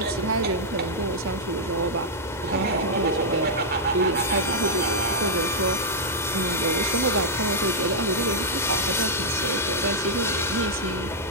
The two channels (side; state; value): both; normal; correlation -0.05